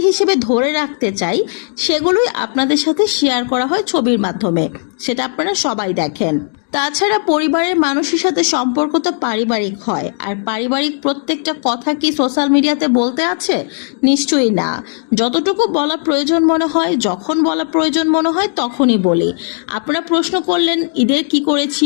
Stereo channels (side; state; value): right; silent; 60 dB below the other